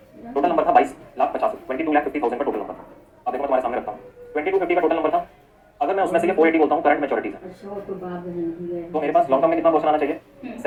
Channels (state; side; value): identical; both; correlation 1.00